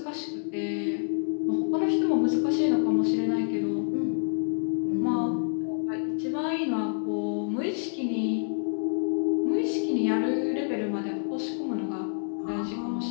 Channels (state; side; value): silent; right; 60 dB below the other